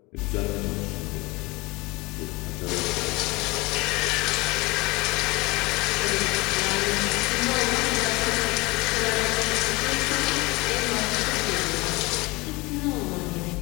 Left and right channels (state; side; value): quieter; right; 23.9 dB